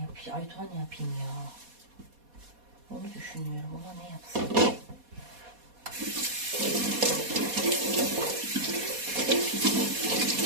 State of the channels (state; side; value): late; left; 4.2 ms